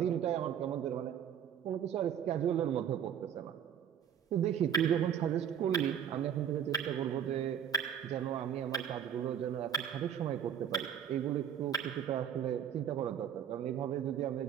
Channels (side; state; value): left; quieter; 9.1 dB